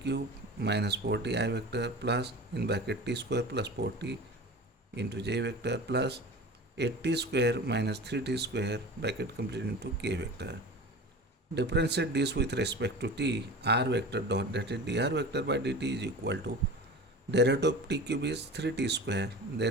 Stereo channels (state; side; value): normal; both; correlation 0.35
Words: minus 40 I vector plus in bracket t square plus 40 into j vector plus 8t square minus 3t square bracket complete into k vector. Differentiate this with respect to t, r vector dot, that is dr vector by dt is equal to derivative of t cube is 3t square,